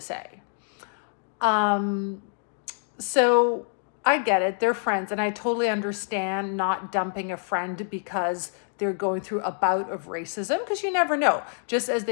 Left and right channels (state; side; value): silent; right; 61 dB below the other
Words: So I get it. They're friends. And I totally understand not dumping a friend because they're going through a bout of racism, because you never know. Just as